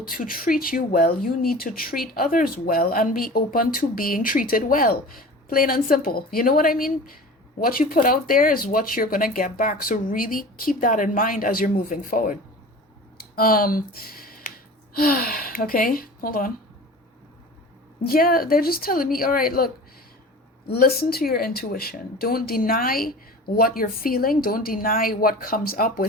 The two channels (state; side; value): normal; both; correlation 0.38